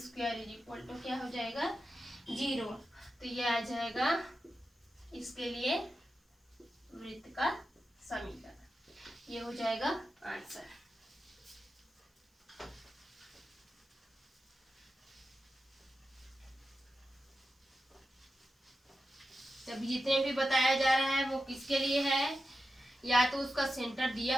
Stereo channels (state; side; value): normal; both; correlation 0.91